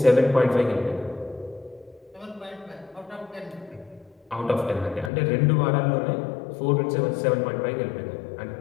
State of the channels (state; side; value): drops out; right; at 5.1 s